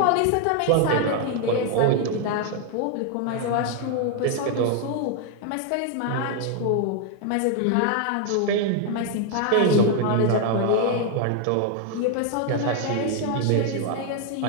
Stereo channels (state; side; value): different; both; correlation 0.00